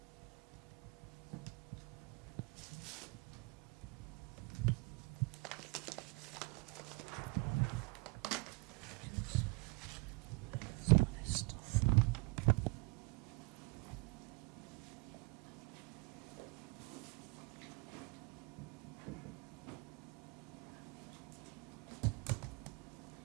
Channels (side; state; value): left; quieter; 27.5 dB